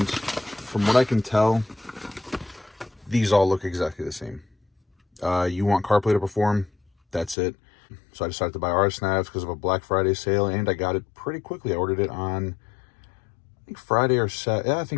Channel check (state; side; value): drops out; right; at 7.4 s